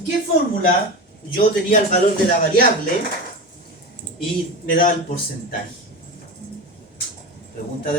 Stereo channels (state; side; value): normal; both; correlation 0.24